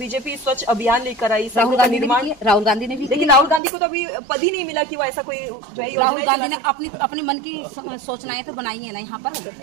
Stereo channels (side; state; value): left; drops out; at 3.6 s